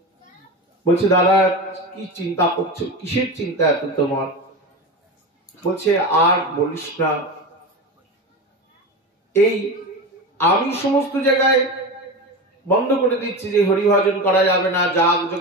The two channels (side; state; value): both; normal; correlation 0.24